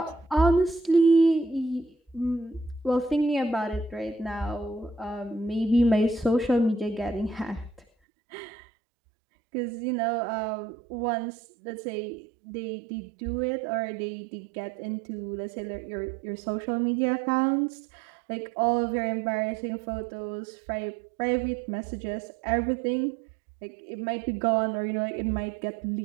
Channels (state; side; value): drops out; left; at 7.9 s